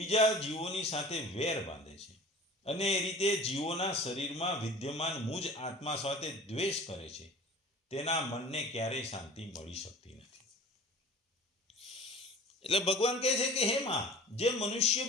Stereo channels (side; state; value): both; normal; correlation 0.42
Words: જીવોની સાથે વેર બાંધે છે અને એ રીતે જીવોના શરીરમાં વિદ્યમાન મુજ આત્મા સાથે દ્વેષ કરે છે, તેના મનને ક્યારેય શાંતિ મળી શકતી નથી. એટલે ભગવાન કહે છે કે હે માં, જે મનુષ્ય